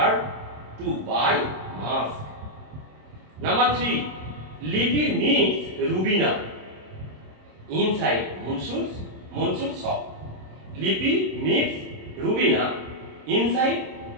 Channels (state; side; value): late; left; 27 ms